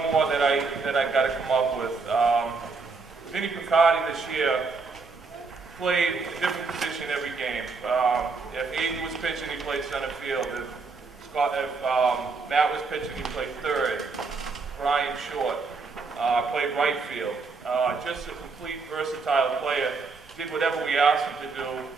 more that I got to come up with. Vinny Picardi this year played a different position every game. If Aiden was pitching, he played center field. If Matt was pitching, he played third. Brian Short played right field. Just a complete versatile player. Did whatever we asked him to do,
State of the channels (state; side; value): quieter; left; 4.4 dB